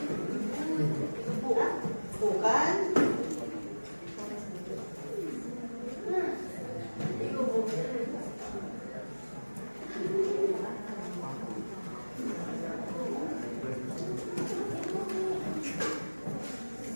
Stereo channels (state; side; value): inverted; both; correlation -1.00